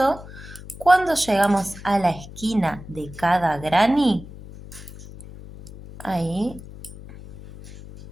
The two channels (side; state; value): left; noise; hum, 16 dB below the sound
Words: Cuando llegamos a la esquina de cada granny, ahí